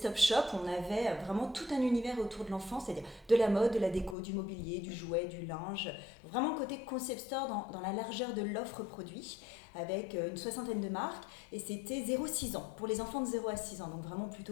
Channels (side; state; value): right; drops out; at 4.2 s